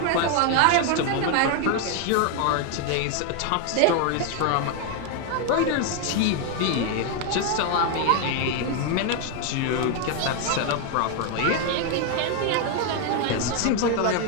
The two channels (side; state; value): both; different; correlation 0.01